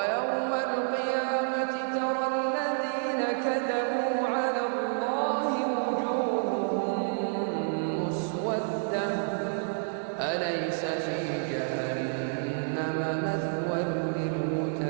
القيامة ترى الذين كذبوا على الله وجوههم مسودة أليس في جهنم مثوى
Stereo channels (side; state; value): left; silent; digital silence